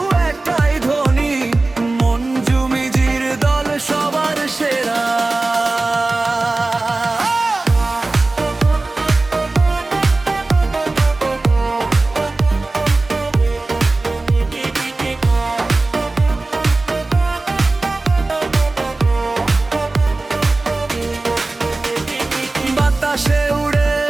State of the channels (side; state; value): left; quieter; 3.2 dB